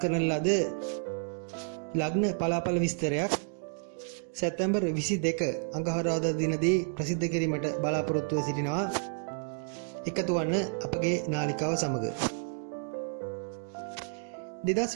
ලද ලග්න පලාපල විස්තරයක් සැප්තැම්බර් 22 අඟහරුවාදා දිනදී ප්‍රසිද්ධ කිරීමට බලාපොරොත්තුව සිටිනවා. එකතු වන්න අපගේ නාලිකාව සමග.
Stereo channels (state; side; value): silent; left; digital silence